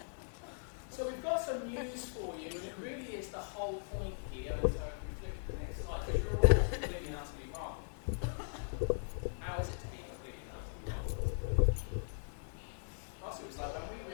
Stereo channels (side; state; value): right; silent; digital silence